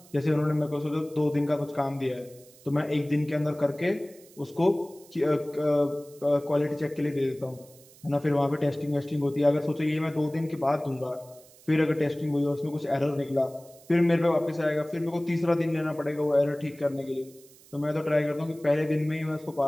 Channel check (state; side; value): noise; right; hiss, 24 dB below the sound